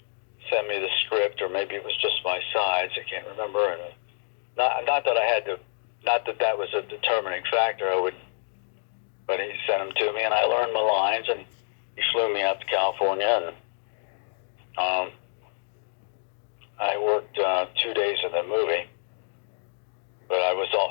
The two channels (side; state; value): right; silent; digital silence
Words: sent me the script, or maybe it was just my sides, I can't remember. And not that I had to, not that that was a determining factor. But he sent them to me, and I learned my lines, and he flew me out to California, and I worked 2 days in the movie, but I was all